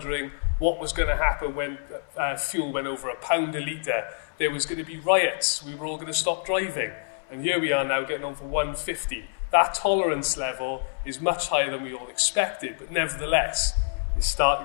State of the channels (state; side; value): silent; right; 60 dB below the other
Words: what was going to happen when fuel went over £1 a litre. There was going to be riots. We were all going to stop driving. And here we are now getting on for 150. That tolerance level is much higher than we all expected, but nevertheless, it's